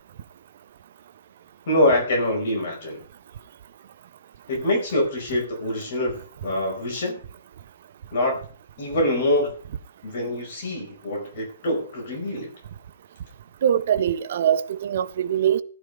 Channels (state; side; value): inverted; both; correlation -0.53